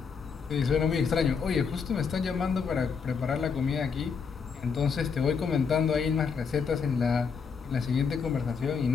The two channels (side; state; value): right; quieter; 5.9 dB